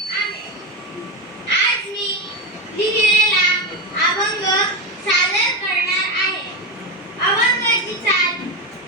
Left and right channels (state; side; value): normal; both; correlation 0.15